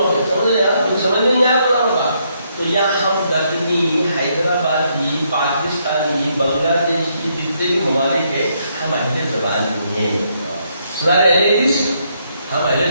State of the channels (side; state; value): both; inverted; correlation -0.75